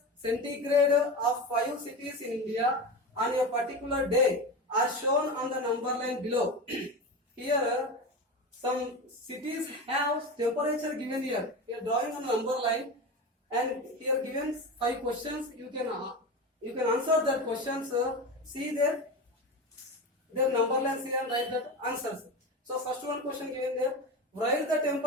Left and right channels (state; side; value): normal; both; correlation 0.24